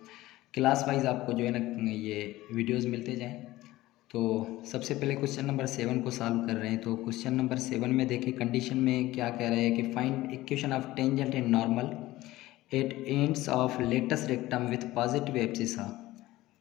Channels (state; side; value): quieter; right; 17.2 dB